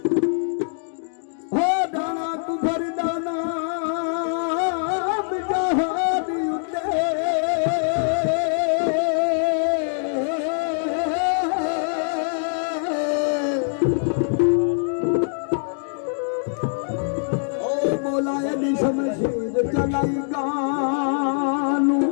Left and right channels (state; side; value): silent; right; digital silence